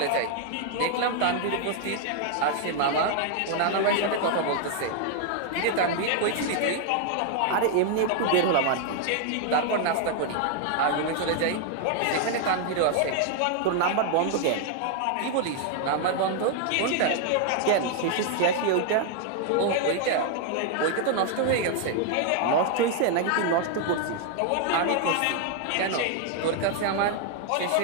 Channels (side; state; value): both; different; correlation 0.00